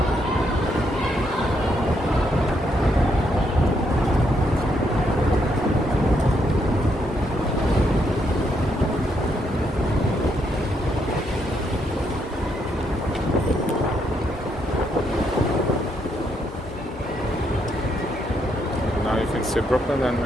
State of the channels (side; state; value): both; normal; correlation 0.76